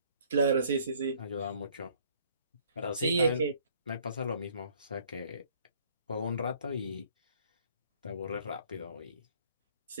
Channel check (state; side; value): inverted; both; correlation -0.60